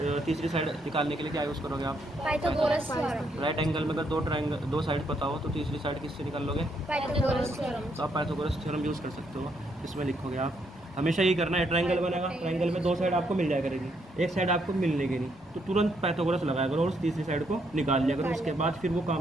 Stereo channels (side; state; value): both; normal; correlation 0.74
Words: तीसरी साइड निकालने के लिए क्या यूज़ करोगे आप? Pythagoras theorem. राइट एंगल में अगर दो साइड पता हो तो तीसरी साइड किससे निकाल लोगे? Pythagoras theorem. तो आप पाइथागोरस थ्योरम यूज़ कर सकते हो। इसमें लिखोगे आप, हमेशा यही करना है। ट्रायंगल बनेगा, ट्रायंगल में दो साइड आपको मिल जाया करेगी, एक साइड आपको मिलने नहीं, तो तुरंत पाइथागोरस लगाया करो और उस तीसरी साइड को निकाल लिया करो। उसके बाद फिर वो